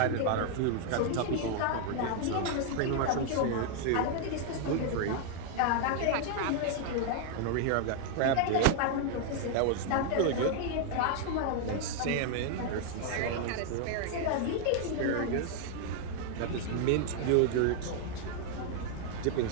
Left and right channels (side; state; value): both; different; correlation 0.00